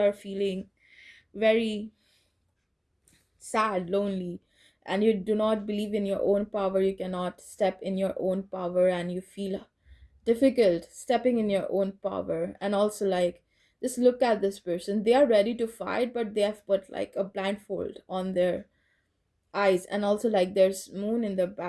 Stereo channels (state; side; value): identical; both; correlation 1.00